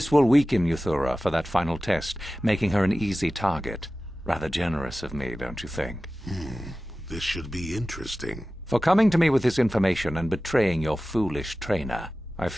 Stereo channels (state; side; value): normal; both; correlation 0.95